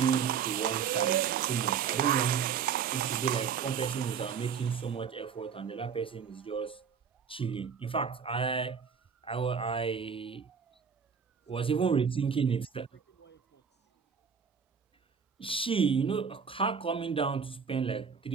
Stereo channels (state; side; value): quieter; left; 6.7 dB